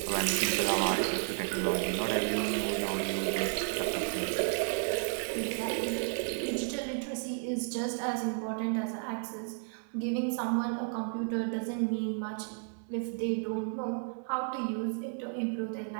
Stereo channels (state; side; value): silent; left; 56 dB below the other